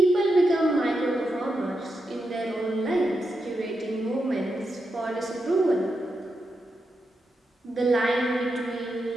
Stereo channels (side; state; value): both; normal; correlation 0.86